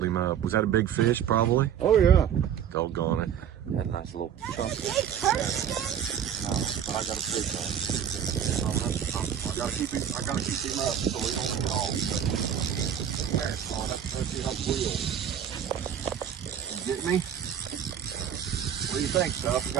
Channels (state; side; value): quieter; left; 9.0 dB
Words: him up. Was that a big fish, probably? Oh yeah. Doggone it. Had a nice little chunk. I got a fish on. I gotta keep him up so he don't get off. Let's see how it wheels. You get me? What do you think, Stuff? You